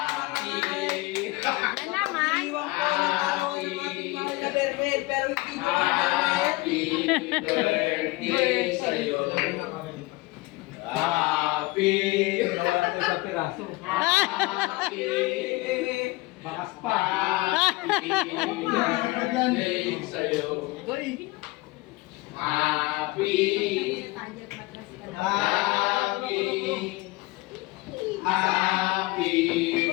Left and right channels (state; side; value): quieter; right; 21.9 dB